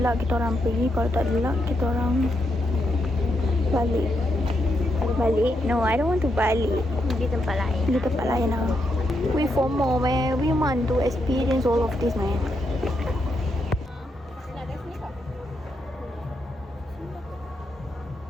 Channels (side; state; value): both; normal; correlation 0.81